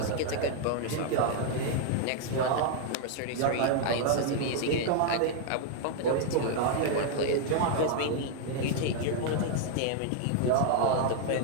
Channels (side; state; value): both; different; correlation 0.00